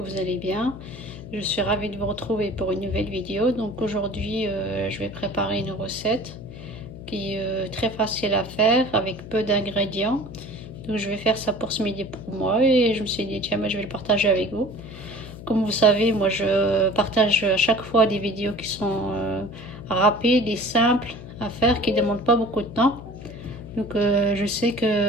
allez bien. Je suis ravie de vous retrouver pour une nouvelle vidéo. Donc aujourd'hui, je vais préparer une recette qui est très facile à faire avec peu d'ingrédients. Donc je vais faire ça pour ce midi pour moi et je me suis dit tiens, je vais le partager avec vous. Comme vous savez, moi je partage à chaque fois des vidéos qui sont rapides et simples à faire, qui ne demandent pas beaucoup de temps. Donc je sais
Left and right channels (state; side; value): noise; left; hum, 14 dB below the sound